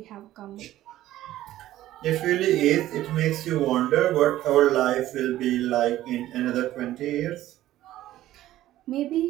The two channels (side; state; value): left; quieter; 14.3 dB